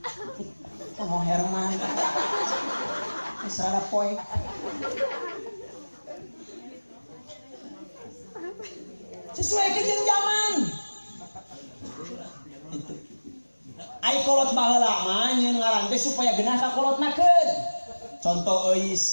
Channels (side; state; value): both; inverted; correlation -1.00